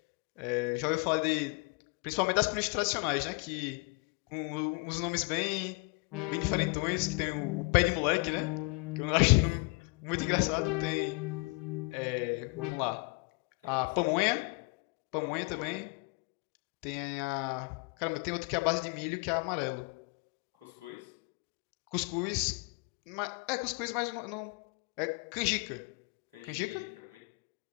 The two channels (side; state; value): right; quieter; 28.9 dB